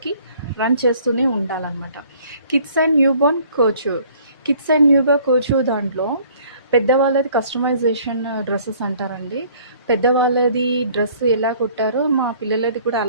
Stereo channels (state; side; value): inverted; both; correlation -0.56